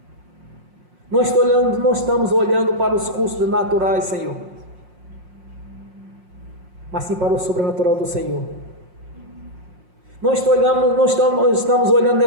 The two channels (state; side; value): late; left; 5.6 ms